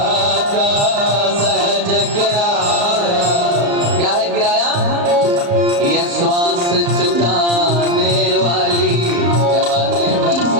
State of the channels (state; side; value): late; left; 35 ms